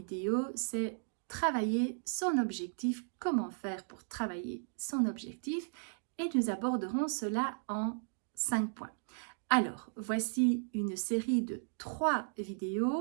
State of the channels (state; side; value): silent; left; digital silence